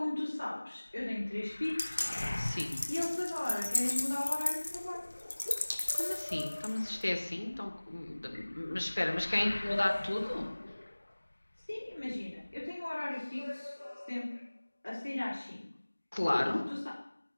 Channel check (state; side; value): inverted; both; correlation -1.00